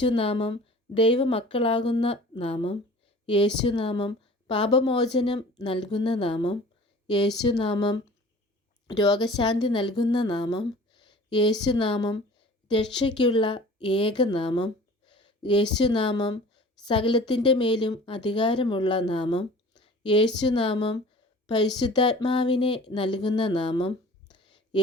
ദൈവമക്കളാകുന്ന നാമം. യേശുനാമം പാപമോചനം നൽകുന്ന നാമം. യേശുനാമം രോഗശാന്തി നൽകുന്ന നാമം. യേശുനാമം രക്ഷയ്ക്കുള്ള ഏകനാമം. യേശുനാമം സകലത്തിൻ്റെ മേലും അധികാരമുള്ള നാമം. യേശുനാമം പരിശുദ്ധാത്മാവിനെ നൽകുന്ന നാമം.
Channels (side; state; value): both; normal; correlation 0.45